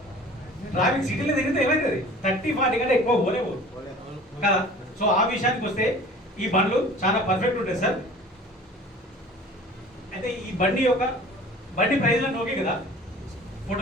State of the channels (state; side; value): normal; both; correlation 0.45